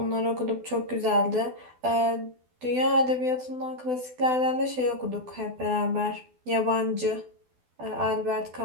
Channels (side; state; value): left; late; 12 ms